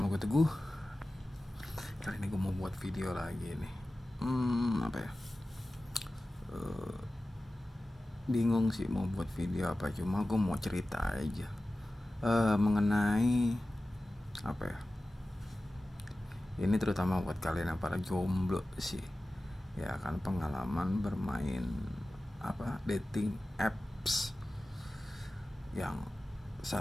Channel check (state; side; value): normal; both; correlation 0.95